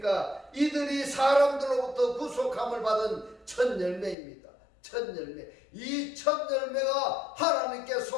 이들이 사람들로부터 구속함을 받은 첫 열매입니다. 첫 열매. 이 첫 열매가 하나님께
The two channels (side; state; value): right; drops out; at 4.2 s